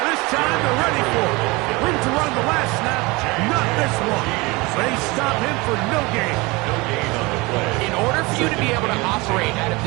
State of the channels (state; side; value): quieter; left; 24.2 dB